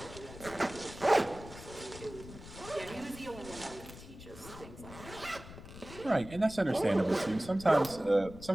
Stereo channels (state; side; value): noise; left; rumble, 15 dB below the sound